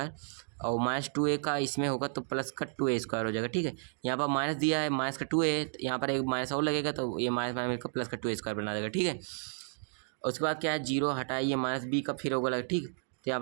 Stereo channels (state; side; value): silent; left; digital silence